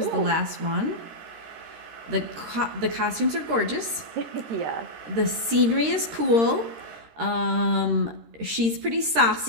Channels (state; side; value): late; left; 13 ms